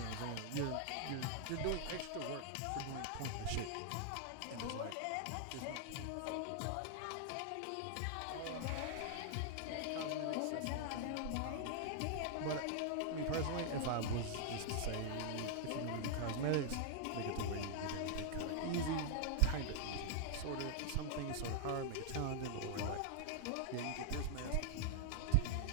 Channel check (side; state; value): both; different; correlation 0.00